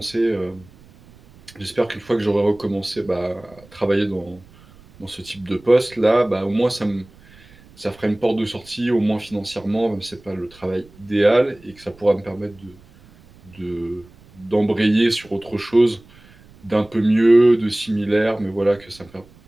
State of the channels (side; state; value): right; noise; rumble, 25 dB below the sound